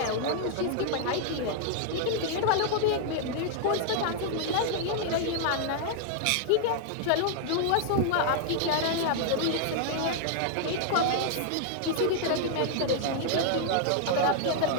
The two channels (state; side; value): different; both; correlation 0.00